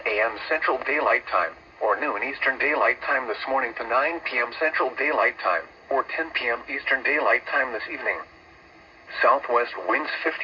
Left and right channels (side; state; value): both; identical; correlation 1.00